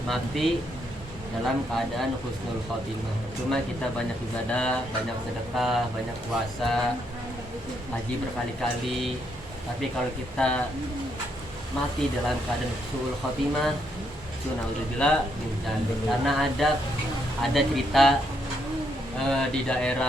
mati dalam keadaan husnul khotimah. Cuma kita banyak ibadah, banyak sedekah, banyak puasa, haji berkali-kali, tapi kalau kita mati dalam keadaan husnul khotimah, itu naudzubillah min dzalik. Karena ada cerita di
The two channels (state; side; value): normal; both; correlation 0.76